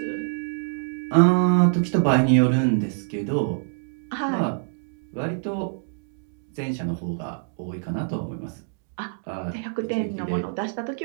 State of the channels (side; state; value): left; silent; digital silence